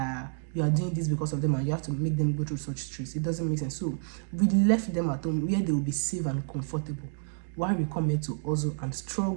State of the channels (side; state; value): left; silent; 58 dB below the other